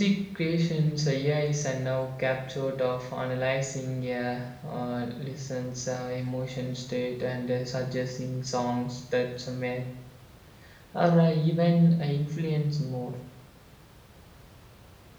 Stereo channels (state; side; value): identical; both; correlation 1.00